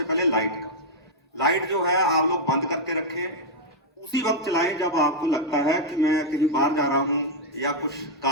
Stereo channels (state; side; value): normal; both; correlation -0.03